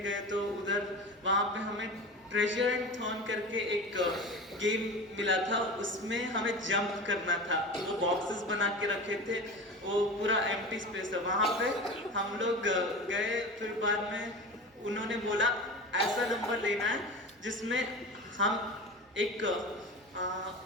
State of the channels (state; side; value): normal; both; correlation 0.31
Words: गए तो उधर वहाँ पे हमें ट्रेजर एंड थॉर्न करके एक गेम मिला था, उसमें हमें जंप करना था। वो बॉक्सेस बना के रखे थे, वो पूरा एम्प्टी स्पेस था। वहाँ पे हम लोग गए, फिर बाद में उन्होंने बोला ऐसा नंबर लेना है जिसमें हम एक